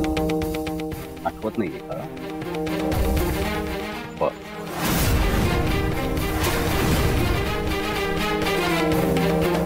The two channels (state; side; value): identical; both; correlation 1.00